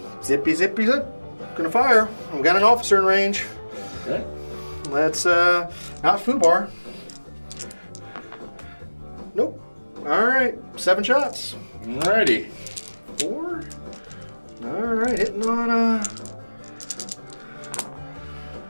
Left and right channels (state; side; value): inverted; both; correlation -1.00